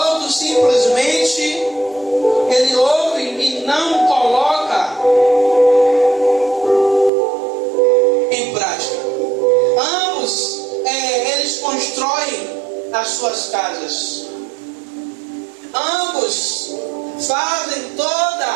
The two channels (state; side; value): drops out; left; at 7.1 s